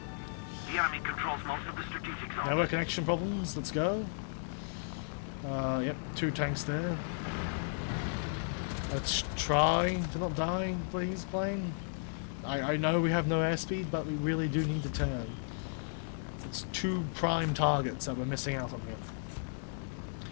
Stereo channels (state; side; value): silent; right; digital silence